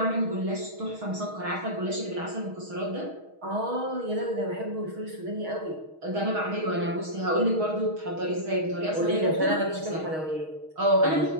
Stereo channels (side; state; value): left; late; 6.3 ms